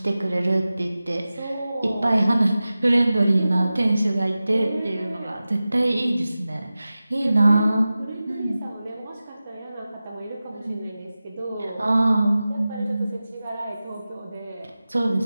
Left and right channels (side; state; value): both; inverted; correlation -0.95